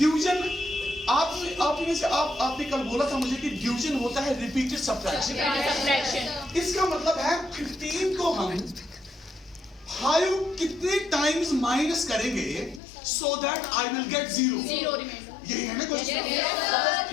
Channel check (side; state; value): right; drops out; at 12.8 s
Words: आपने कल बोला था मुझे कि डिवीजन होता है रिपीटेड सब्ट्रैक्शन। इसका मतलब है 15 को हम 5 कितने टाइम्स माइनस करेंगे so that I will get 0। यही है ना क्वेश्चन।